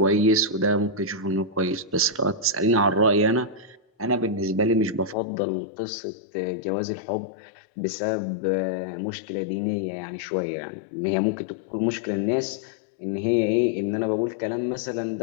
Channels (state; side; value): drops out; right; at 5.2 s